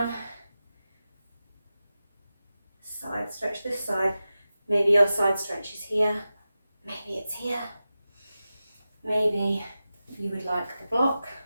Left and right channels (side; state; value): both; inverted; correlation -0.93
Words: side stretch this side. Maybe your side stretch is here, maybe it's here, maybe you would like the block